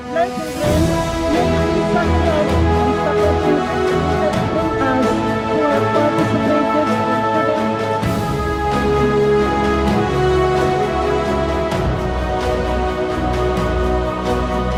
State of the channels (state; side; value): identical; both; correlation 1.00